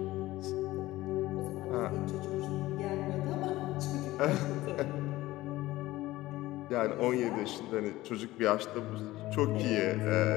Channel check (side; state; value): right; quieter; 17.4 dB